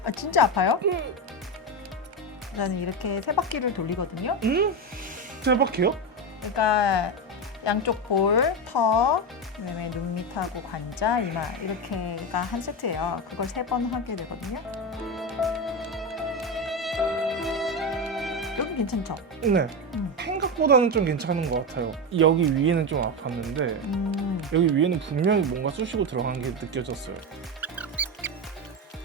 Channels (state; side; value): normal; both; correlation 0.14